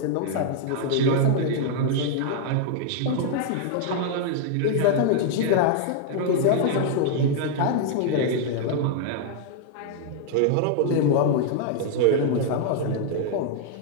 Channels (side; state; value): both; different; correlation 0.00